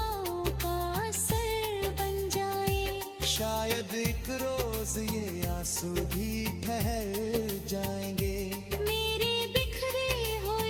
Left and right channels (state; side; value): identical; both; correlation 1.00